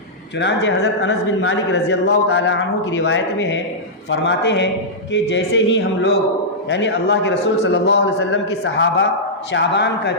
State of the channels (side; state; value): both; normal; correlation -0.12